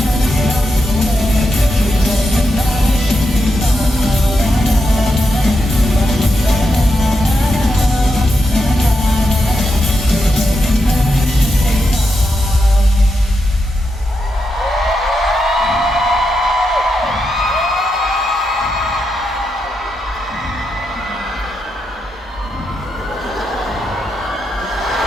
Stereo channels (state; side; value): normal; both; correlation 0.85